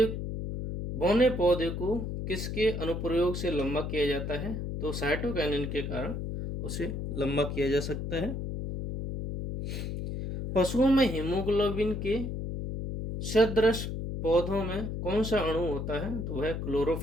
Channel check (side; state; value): left; noise; hum, 4 dB below the sound